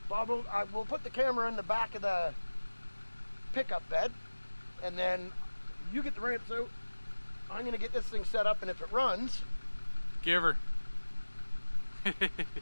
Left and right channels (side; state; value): both; inverted; correlation -1.00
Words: Bob, we'll put the camera in the back of the pickup bed, and then you get the ramps out. I'm gonna get this thing set up, and if it runs, give her.